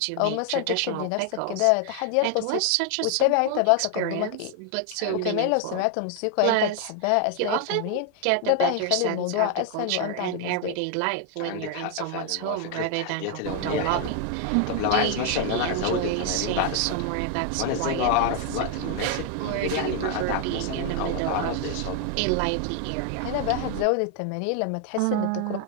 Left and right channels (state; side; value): different; both; correlation 0.00